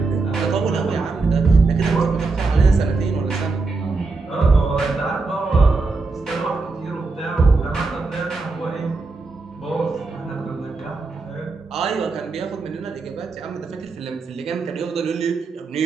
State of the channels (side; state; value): left; quieter; 3.9 dB